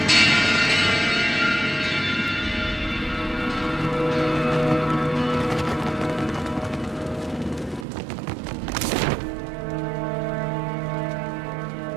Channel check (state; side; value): drops out; left; at 7.9 s